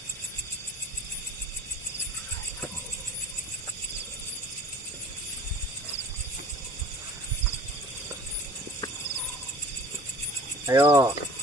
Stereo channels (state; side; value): normal; both; correlation 0.46